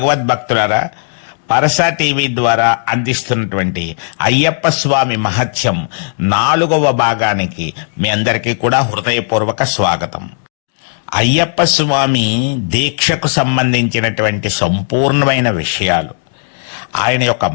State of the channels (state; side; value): silent; right; digital silence